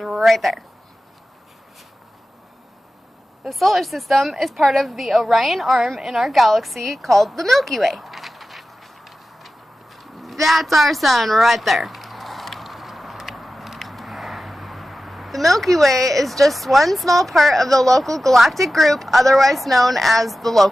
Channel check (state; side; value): normal; both; correlation 0.94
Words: there. The solar system is part of the Orion arm in our galaxy called the Milky Way. That's our sun right there. The Milky Way is just one small part of the local galactic group, otherwise known as the